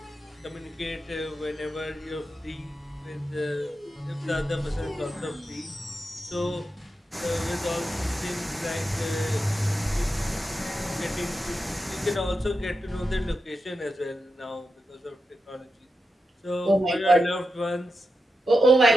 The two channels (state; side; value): normal; both; correlation 0.89